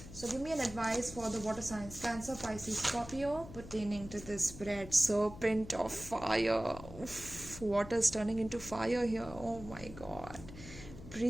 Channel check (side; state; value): left; noise; hum, 14 dB below the sound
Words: So give me an advice for the water signs. Cancer, Pisces, Scorpio pertaining to this spread. Serpent of fire. Oof, water's turning into fire here. Oh my God.